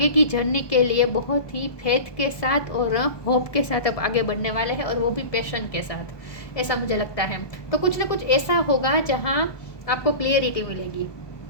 की जर्नी के लिए बहुत ही फेथ के साथ और होप के साथ अब आगे बढ़ने वाले हैं, और वो भी पैशन के साथ, ऐसा मुझे लगता है। तो कुछ ना कुछ ऐसा होगा जहां आपको क्लियरिटी मिलेगी,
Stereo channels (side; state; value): right; late; 1.2 ms